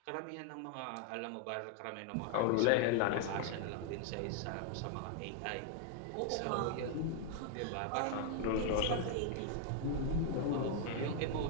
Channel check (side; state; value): both; different; correlation 0.00